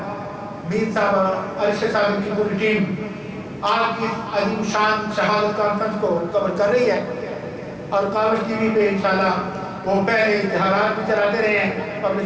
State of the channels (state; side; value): identical; both; correlation 1.00